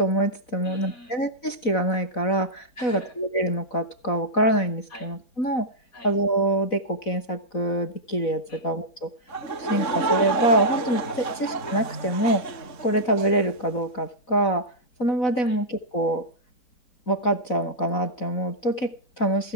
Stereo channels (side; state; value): right; late; 4.0 ms